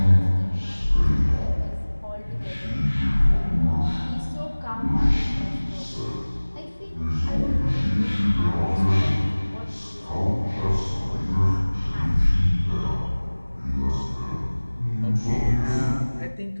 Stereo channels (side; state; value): both; inverted; correlation -1.00